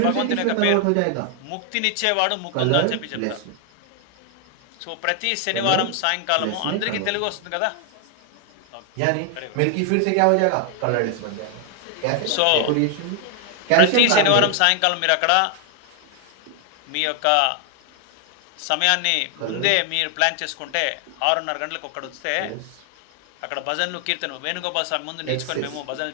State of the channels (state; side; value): different; both; correlation 0.00